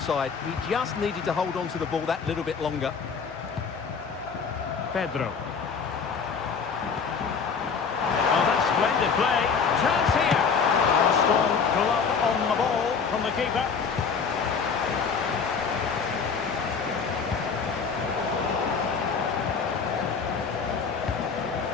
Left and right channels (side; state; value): right; quieter; 5.7 dB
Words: He just needed to hold on to the ball that little bit longer. Pedro. Oh, that's splendid play. Chance here. A strong glove on the ball from the keeper.